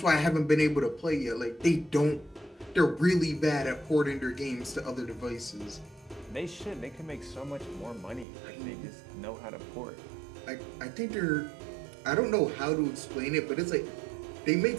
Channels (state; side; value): drops out; left; at 8.2 s